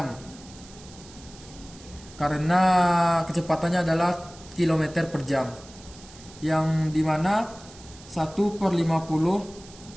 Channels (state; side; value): noise; right; hiss, 20 dB below the sound